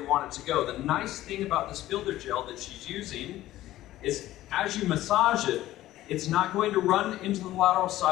want it to go. The nice thing about this builder gel that she's using is as you massage it, It's not going to run into the lateral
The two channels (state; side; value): quieter; right; 14.9 dB